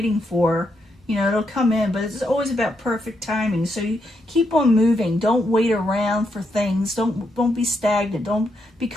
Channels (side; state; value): both; normal; correlation 0.80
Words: for. You know, it'll come in, but it's always about perfect timing. So you keep on moving. Don't wait around for things. Don't be stagnant. Don't